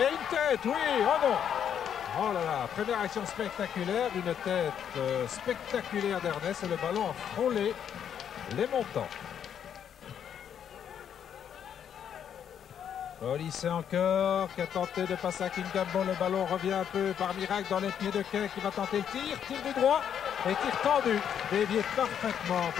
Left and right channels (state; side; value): quieter; right; 8.7 dB